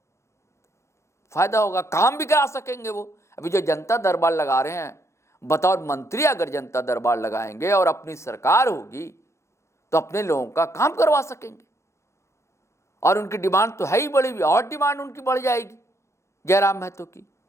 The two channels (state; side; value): late; right; 0.14 ms